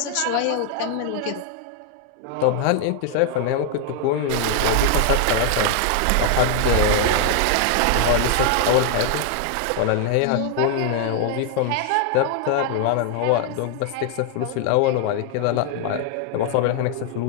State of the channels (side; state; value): both; different; correlation 0.00